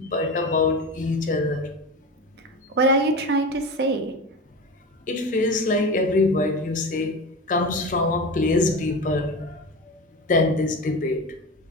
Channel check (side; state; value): both; normal; correlation 0.26